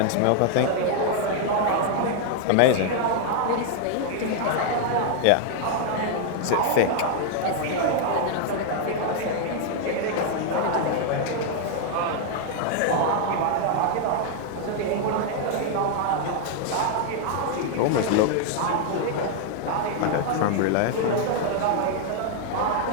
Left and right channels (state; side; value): different; both; correlation 0.00